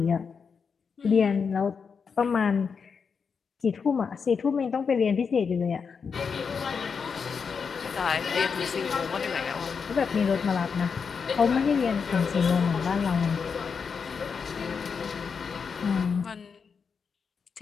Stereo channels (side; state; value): right; quieter; 5.8 dB